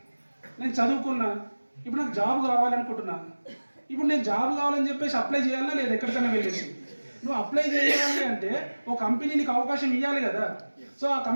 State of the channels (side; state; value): both; inverted; correlation -1.00